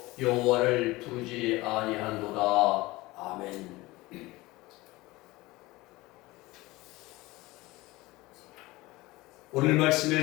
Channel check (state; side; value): quieter; right; 20.4 dB